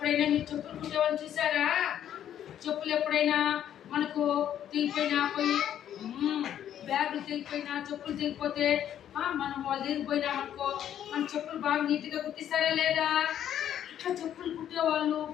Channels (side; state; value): right; quieter; 10.4 dB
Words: మీరు చెప్పులు కుట్టేవాళ్ళని చూసారా? చెప్పులు ఎప్పుడైనా మనకు తెగిపోయినా పోయి బ్యాగులు తెగిపోయినా చెప్పులు తెగిపోతే మనం వాళ్ళు తెగిపోయినా అనుకో మన చెప్పులు బాగా నీట్గా కుట్టిస్తారా లేదా? ఇట్లా చెప్పులు కుట్టేవాళ్ళు,